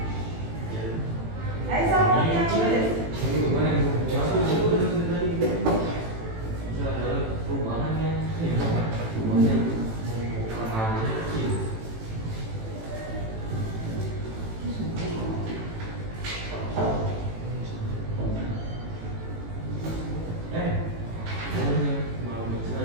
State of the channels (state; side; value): late; left; 18 ms